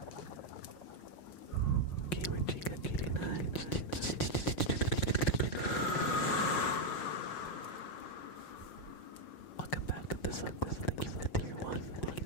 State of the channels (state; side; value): late; right; 5.5 ms